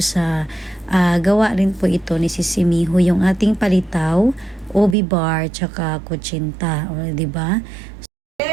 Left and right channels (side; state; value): left; drops out; at 5.0 s